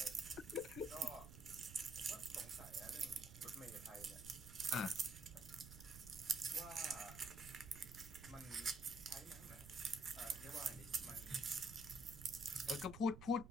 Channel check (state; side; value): noise; right; rumble, 13 dB below the sound